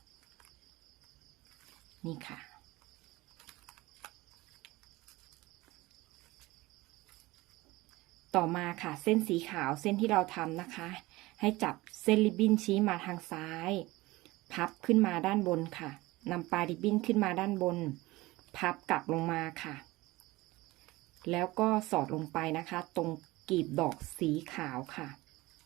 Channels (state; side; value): quieter; left; 20.1 dB